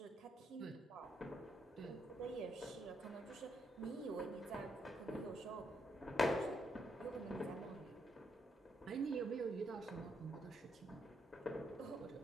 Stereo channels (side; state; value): both; normal; correlation 0.77